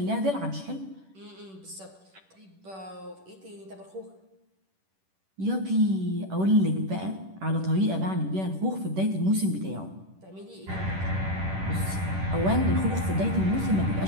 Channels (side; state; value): left; late; 10 ms